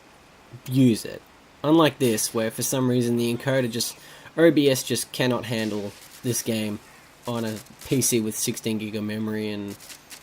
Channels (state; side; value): identical; both; correlation 1.00